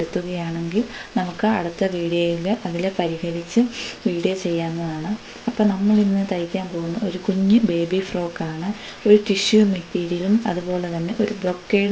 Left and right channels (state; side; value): identical; both; correlation 1.00